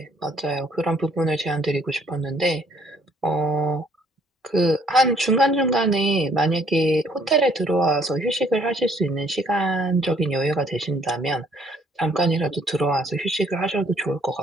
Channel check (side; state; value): both; normal; correlation 0.63